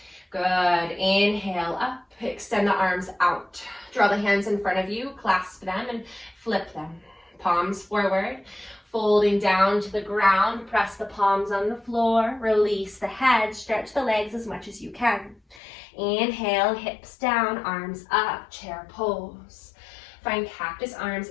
Good. Inhale up. Extend the arms out. Draw the hands in front of you. Clasp them and flip them. Palms forward. Folding down to the ground. Press the palms on the floor. Release the head. Stretch the legs as much as you can. Inhale. Hips down. Arms up. Chair pose. Find cactus arms.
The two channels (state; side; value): drops out; right; at 15.6 s